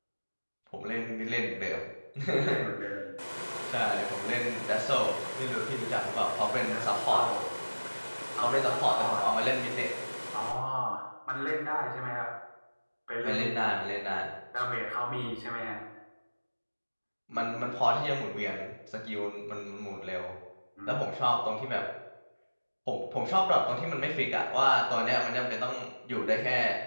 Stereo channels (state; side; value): inverted; both; correlation -1.00